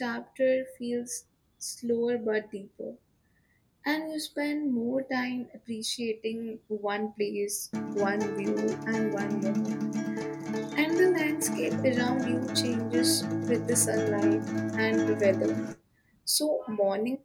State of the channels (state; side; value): identical; both; correlation 1.00